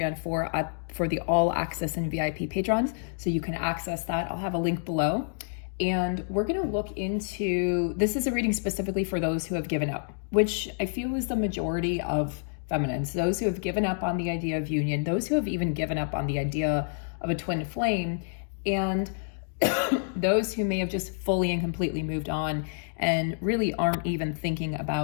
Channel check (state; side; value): silent; right; digital silence